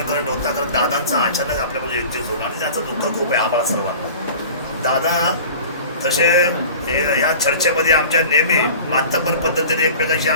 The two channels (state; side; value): inverted; both; correlation -0.41